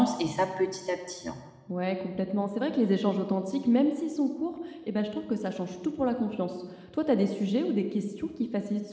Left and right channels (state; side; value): identical; both; correlation 1.00